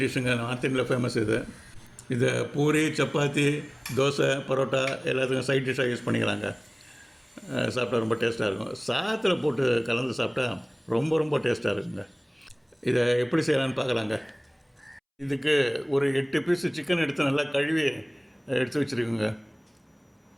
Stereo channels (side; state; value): both; identical; correlation 1.00